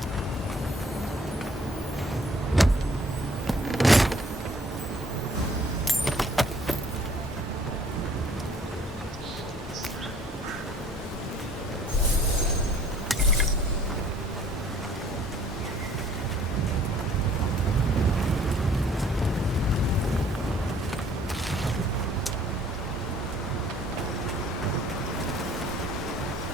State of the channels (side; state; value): both; normal; correlation 0.57